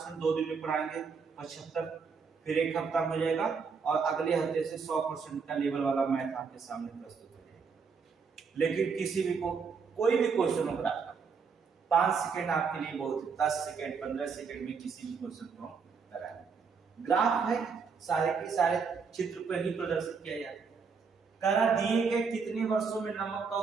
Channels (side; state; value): left; quieter; 5.5 dB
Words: 2 दिन में पढ़ाएंगे, 75 फिर एक हफ्ता हो जाएगा, और अगले हफ्ते से 100% का लेवल वाला मैथ आपके सामने प्रस्तुत हो जाएगा। लेकिन किसी भी को कोई भी क्वेश्चन हो रहा 5 सेकंड आपके लिए बहुत है, 10 सेकंड 15 सेकंड में किसी भी क्वेश्चन को कराएं। ग्राफ है, सारे के सारे चित्र पर ही प्रदर्शित किया जाता है। करा दिए गए कितने वर्षों में नमक का